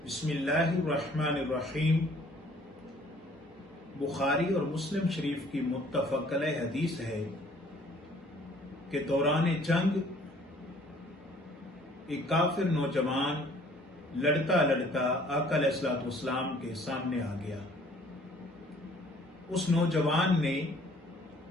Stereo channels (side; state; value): both; normal; correlation 0.57